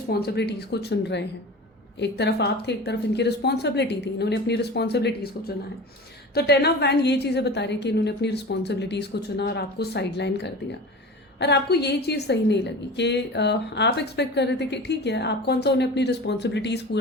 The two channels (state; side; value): normal; both; correlation 0.34